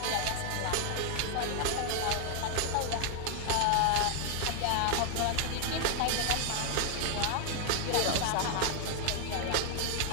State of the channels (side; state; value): both; different; correlation 0.00